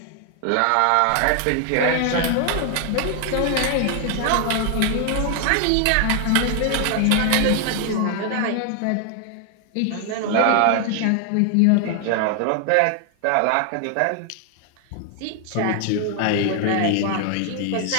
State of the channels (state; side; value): different; both; correlation 0.00